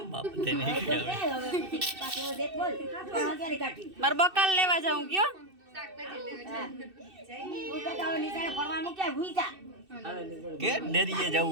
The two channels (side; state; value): left; late; 2.6 ms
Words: બાપ તેને પાછું દેખ બોલ ક્યારે કાઢી મારે બકાલ લેવા જાઉં કયો તું કહેતા હોય નીચાણે ફરવા મૂક્યા ભૂઈ જા કે ડેરીએ